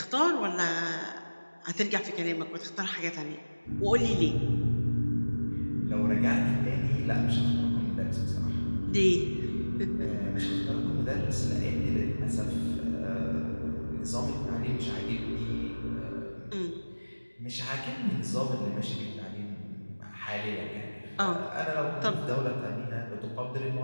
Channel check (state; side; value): inverted; both; correlation -1.00